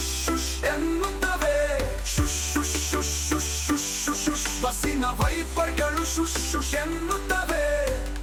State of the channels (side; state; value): both; identical; correlation 1.00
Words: ಶುಶ್ ಎನ್ನುತ್ತವೆ, ಶುಶ್ ಶುಶ್ ಶುಶ್ ಶುಶ್ ಶುಶ್ ಶುಶ್ ಶುಶ್. ಬಸ್ಸಿನ ವೈಪರ್ಗಳು ಶುಶ್ ಶುಶ್ ಎನ್ನುತ್ತವೆ